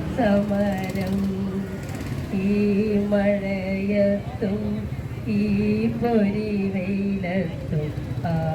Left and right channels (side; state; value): both; identical; correlation 1.00